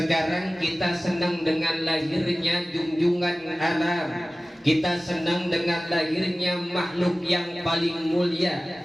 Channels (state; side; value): normal; both; correlation 0.97